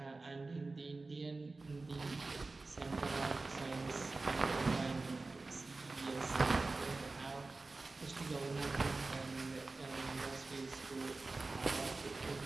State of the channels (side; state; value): left; quieter; 3.5 dB